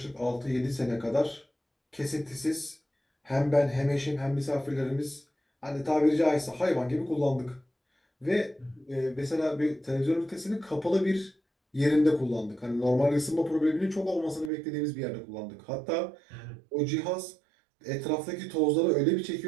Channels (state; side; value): drops out; left; at 14.5 s